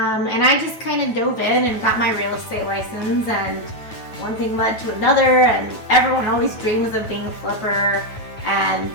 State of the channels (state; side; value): late; right; 9.1 ms